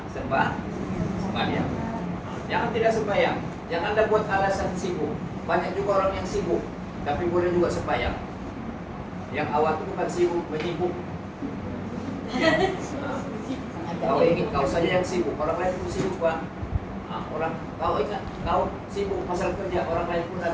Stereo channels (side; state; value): both; identical; correlation 1.00